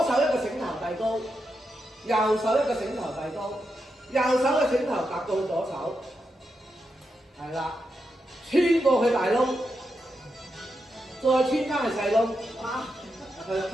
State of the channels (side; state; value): both; normal; correlation 0.86